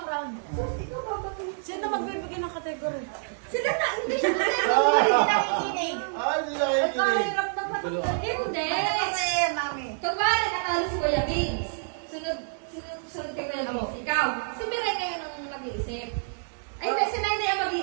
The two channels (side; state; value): left; silent; digital silence